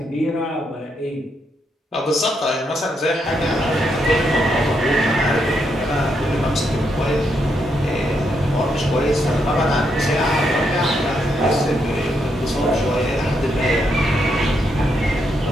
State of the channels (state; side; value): normal; both; correlation 0.79